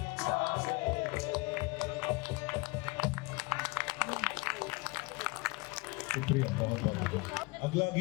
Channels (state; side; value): quieter; right; 25.5 dB